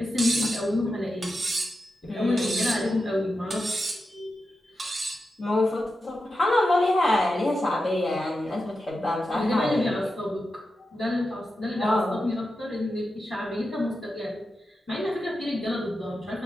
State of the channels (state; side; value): normal; both; correlation 0.90